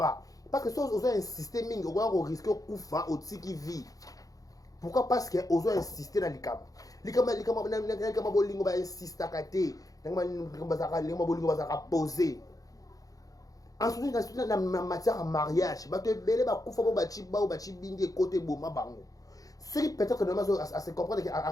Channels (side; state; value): right; late; 0.17 ms